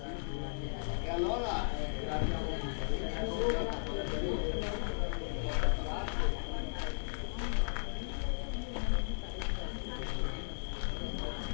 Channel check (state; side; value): silent; right; digital silence